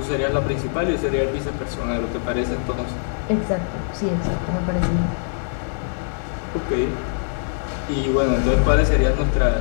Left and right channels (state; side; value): silent; right; digital silence